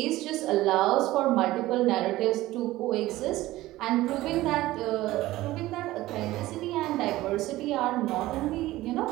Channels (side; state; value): left; quieter; 16.9 dB